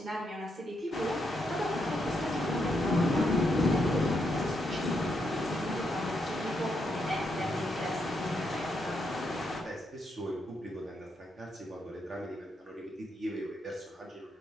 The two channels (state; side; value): normal; both; correlation 0.80